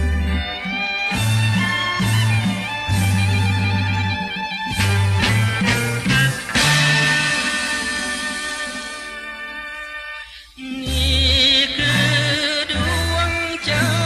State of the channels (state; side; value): identical; both; correlation 1.00